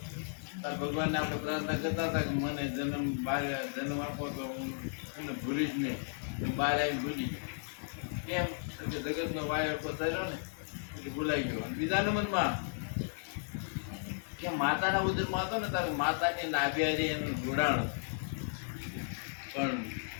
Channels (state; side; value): silent; right; digital silence